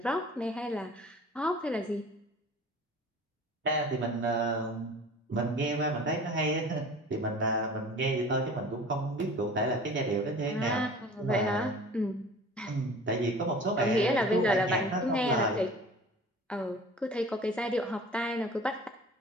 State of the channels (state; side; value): normal; both; correlation 0.43